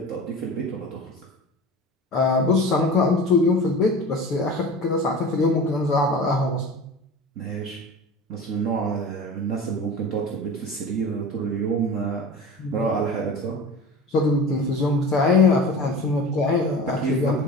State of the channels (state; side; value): normal; both; correlation 0.35